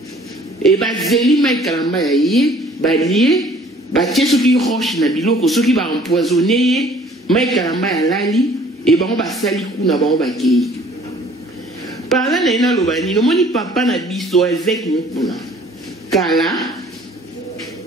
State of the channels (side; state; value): both; normal; correlation 0.55